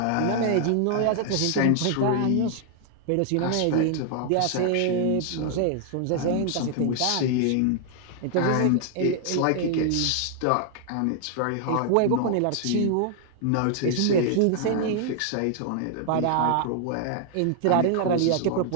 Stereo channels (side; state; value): both; different; correlation 0.00